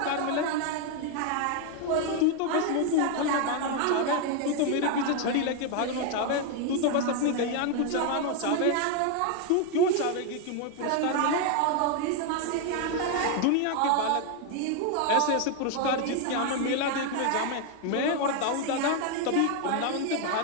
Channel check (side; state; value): both; different; correlation 0.01